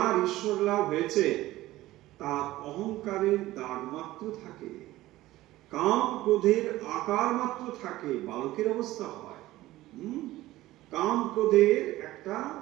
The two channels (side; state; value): left; quieter; 16.6 dB